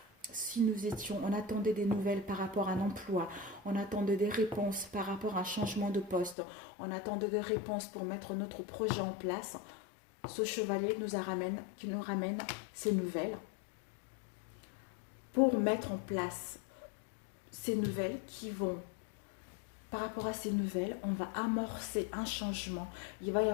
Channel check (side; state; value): right; drops out; at 6.4 s